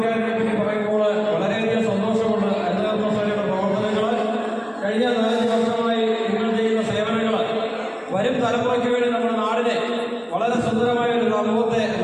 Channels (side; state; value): both; identical; correlation 1.00